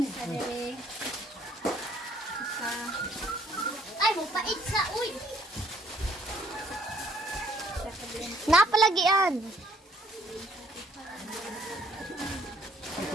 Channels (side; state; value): both; normal; correlation 0.63